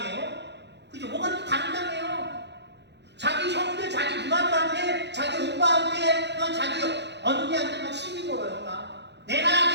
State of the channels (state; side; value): late; left; 0.50 ms